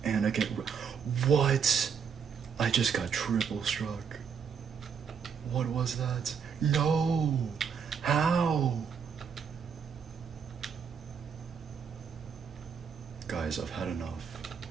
And I get... What? I just got triple struck. What was that? No! How? Guys, I've had enough.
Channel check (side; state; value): left; quieter; 6.7 dB